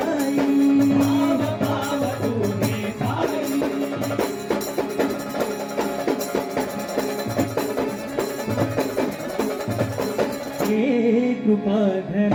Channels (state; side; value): identical; both; correlation 1.00